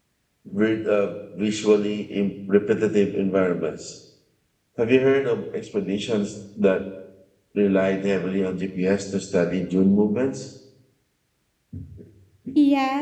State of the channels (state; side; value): identical; both; correlation 1.00